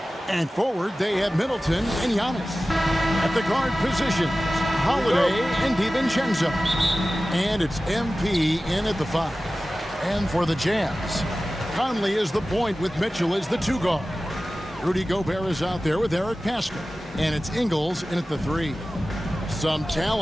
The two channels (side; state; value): both; normal; correlation 0.95